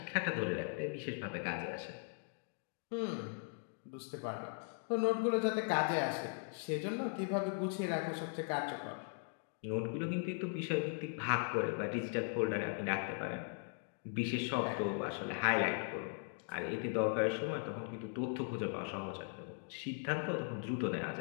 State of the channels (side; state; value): right; silent; 52 dB below the other